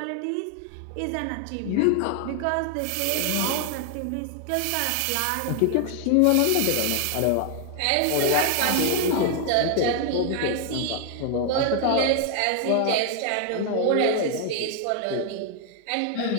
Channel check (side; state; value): both; different; correlation 0.00